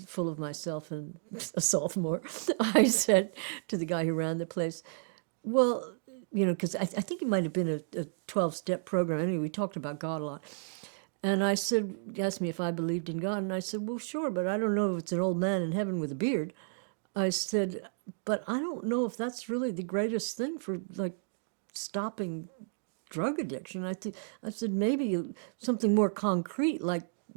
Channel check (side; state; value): left; silent; digital silence